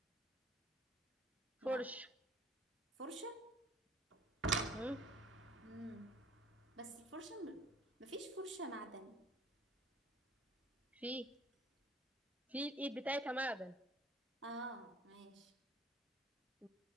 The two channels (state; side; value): normal; both; correlation 0.53